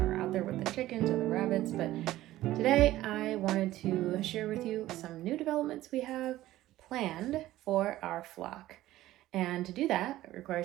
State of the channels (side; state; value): left; quieter; 15.3 dB